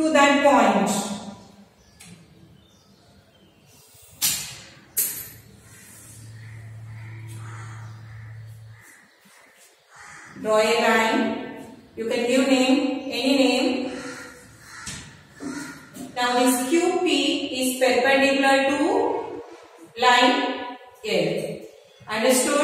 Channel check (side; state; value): both; identical; correlation 1.00